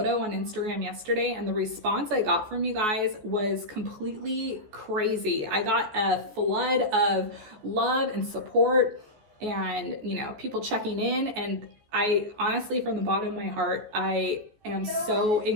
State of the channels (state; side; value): late; left; 14 ms